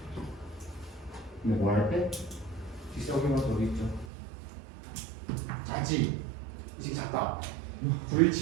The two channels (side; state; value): left; drops out; at 4.1 s